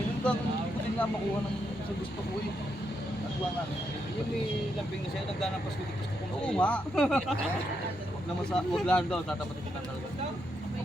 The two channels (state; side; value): normal; both; correlation 0.81